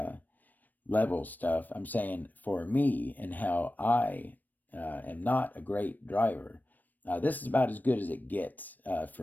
level stuff. I'm saying for me and how I am not a great driver. This is about as good as it gets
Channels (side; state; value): right; late; 0.087 ms